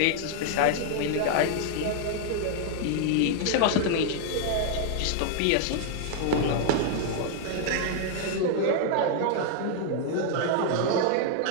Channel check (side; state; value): both; different; correlation 0.00